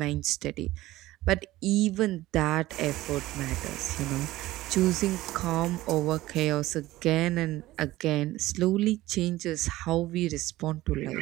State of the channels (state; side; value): quieter; left; 16.9 dB